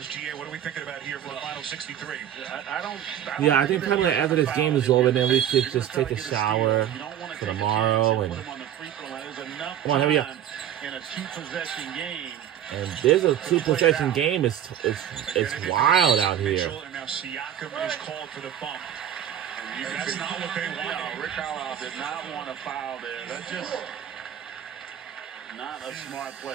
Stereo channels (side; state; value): left; quieter; 10.3 dB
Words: GA, what are we thinking about here for the final 63? Yeah, I think probably after this game is over, then we could just take a shower for tomorrow. And come on, here we go. In a two-possession game. And there's a two-possession game. It's wild out here. And now Siakam is called for the bump. That's not what they wanted. No, Rick Carlisle did not want a foul there. That's just not a smart